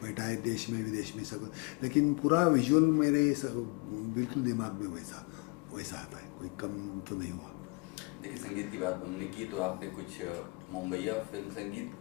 बैठा है देश में विदेश में सब, लेकिन पूरा विजुअल मेरे बिल्कुल दिमाग में वैसा आता है, कोई कम तो नहीं हुआ। देखिए, संगीत की बात हमने की तो आपने कुछ मुंबईया फिल्म संगीत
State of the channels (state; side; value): quieter; right; 29.9 dB